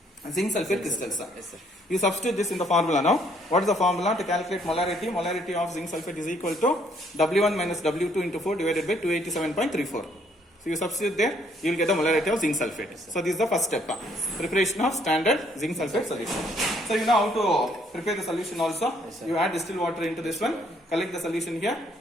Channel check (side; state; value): both; normal; correlation 0.66